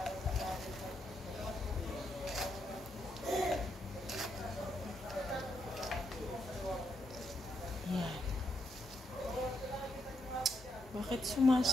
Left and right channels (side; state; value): both; normal; correlation 0.79